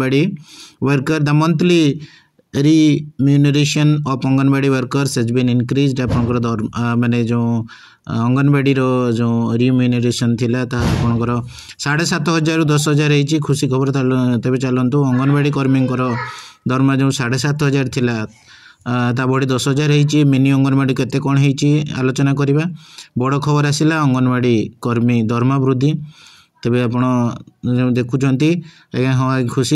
worker the monthly remuneration of anganwadi workers has been increased. आपंकर माने जो अंगनवाड़ी जो रिम्यूनरेशन थिला आपंकर 7,500 रु 10,000 होती खुशी खबर। तेज चलतु अंगनवाड़ी कर्मी दरमा जो 7,500 थिला ता बढ़ी 10,000 होती। मिनी अंगनवाड़ी केते कौन होती आलोचना करवा। बड़ खबर आसला अंगनवाड़ी कर्मी दरमा वृद्धि। तेज आप देखुं आज्ञा हाँ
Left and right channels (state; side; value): identical; both; correlation 1.00